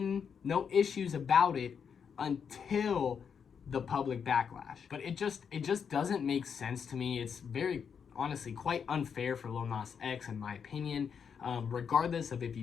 issues about it until the public backlash. But it just doesn't make sense to me. It's very, honestly, quite unfair for Lil Nas X, in my opinion. Regardless of if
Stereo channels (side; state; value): right; quieter; 6.9 dB